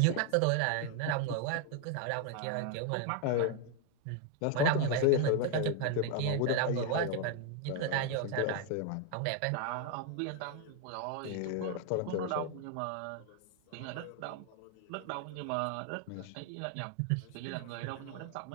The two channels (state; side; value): different; both; correlation 0.01